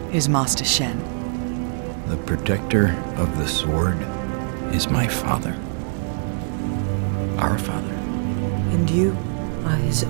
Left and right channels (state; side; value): silent; left; 63 dB below the other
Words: is Master Shen. The protector of the sword is my father. Our father. And you are his